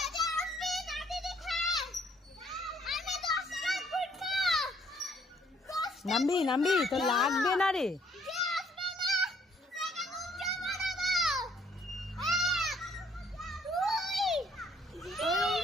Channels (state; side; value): normal; both; correlation 0.65